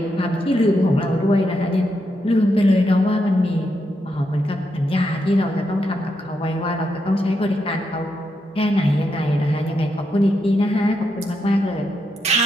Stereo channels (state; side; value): normal; both; correlation 0.82